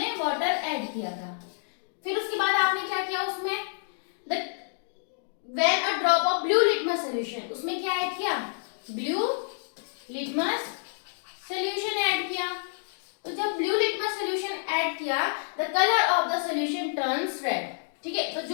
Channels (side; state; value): right; silent; digital silence